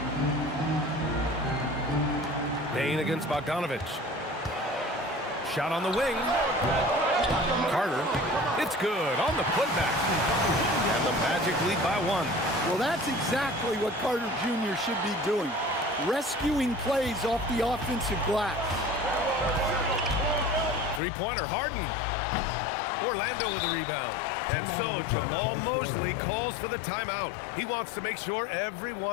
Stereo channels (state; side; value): drops out; right; at 21.0 s